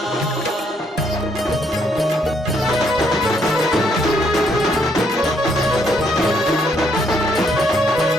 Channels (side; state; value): both; normal; correlation 0.71